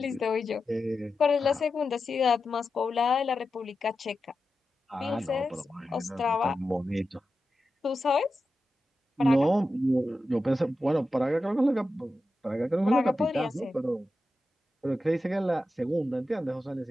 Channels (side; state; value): both; normal; correlation 0.91